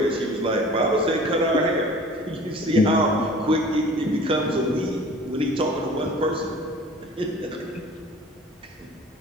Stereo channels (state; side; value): normal; both; correlation 0.45